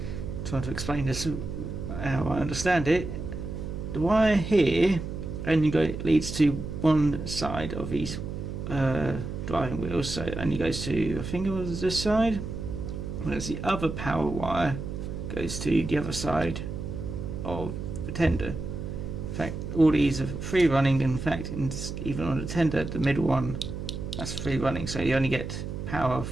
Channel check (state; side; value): noise; right; hum, 6 dB below the sound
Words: to explain this how I understand it. The wire here only leads to one side of these driving wheels, so it only goes to, I think it was this side, whereas the other power wire goes to the other side of the tender. In fact, all these are free running. In fact, even on the tender, the middle one, that's free running, so you only get power